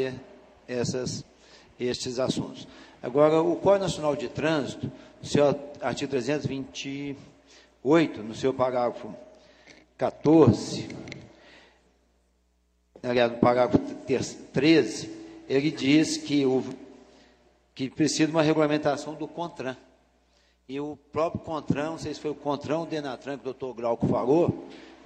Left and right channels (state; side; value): identical; both; correlation 1.00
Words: estes assuntos. Agora, o Código Nacional de Trânsito, no seu artigo 328, no seu parágrafo 14, aliás, no parágrafo 13, ele diz que precisa de uma regulamentação do CONTRAN. E o próprio CONTRAN, não sei se foi o CONTRAN ou o DENATRAN, que o doutor Glauco falou,